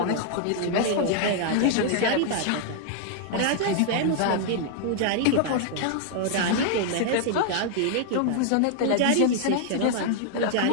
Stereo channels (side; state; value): both; different; correlation 0.00